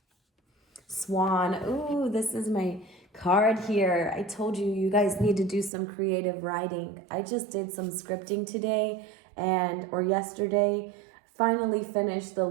Swan. Ooh, this is my card here. I told you, you guys need to do some creative writing. I just did some scripting today or yesterday. Finally finished the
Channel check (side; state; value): left; drops out; at 5.7 s